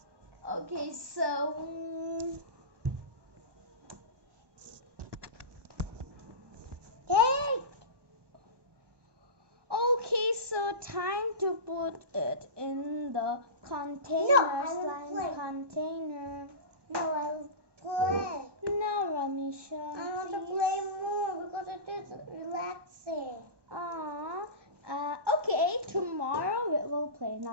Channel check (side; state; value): left; late; 1.2 ms